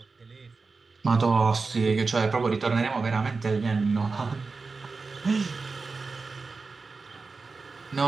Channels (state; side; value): quieter; left; 4.2 dB